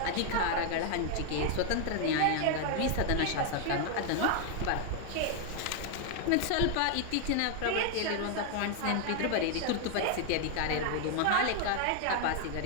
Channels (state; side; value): different; both; correlation 0.00